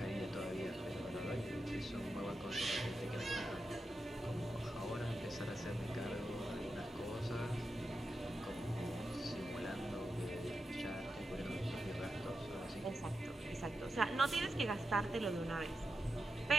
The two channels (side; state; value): both; normal; correlation 0.89